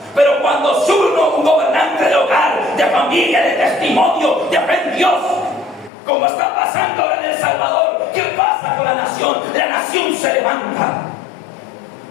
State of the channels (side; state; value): right; drops out; at 5.9 s